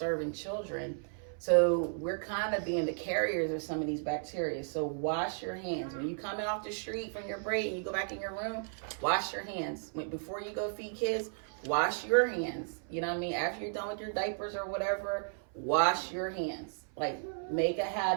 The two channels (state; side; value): silent; left; 55 dB below the other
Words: children. So we're kind of being the carriers of some of these bacteria. So wash your hands. When you coming off the street from your break and you go back in your room, wash your hands. Before you go feed kids, wash your hands. You know what I mean? After you're done with your diapers or whatever, wash your hands. Like, make a